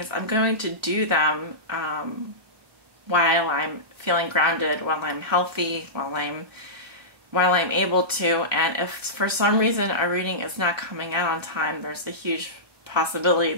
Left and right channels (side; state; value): left; late; 1.2 ms